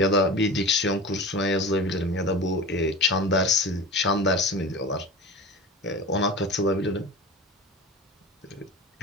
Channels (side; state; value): both; normal; correlation 0.32